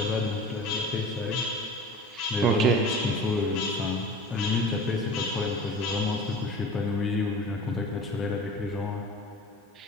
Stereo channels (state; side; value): normal; both; correlation 0.38